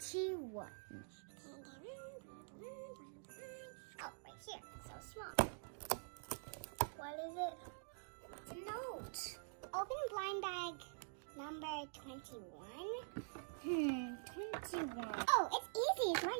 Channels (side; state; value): left; silent; digital silence